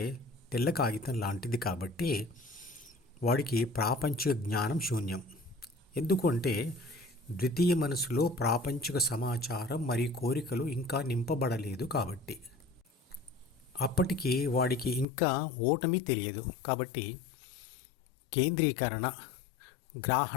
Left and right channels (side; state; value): right; drops out; at 15.1 s